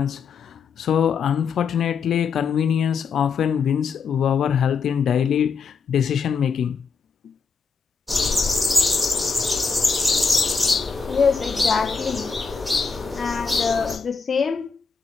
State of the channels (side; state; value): right; quieter; 5.3 dB